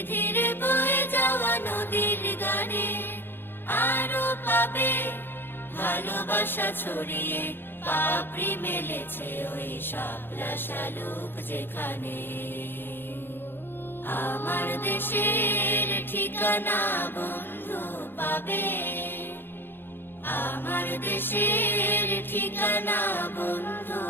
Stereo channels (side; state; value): right; late; 0.10 ms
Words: ধীরে বয়ে যাওয়া নদীর গানে। আরো পাবে ভালোবাসা ছড়িয়ে, পাপড়ি মেলেছে ওই শাপলা শালুক যেখানে। আমার দেশের ঠিকানা বন্ধু পাবে, আমার দেশের ঠিকানা বন্ধু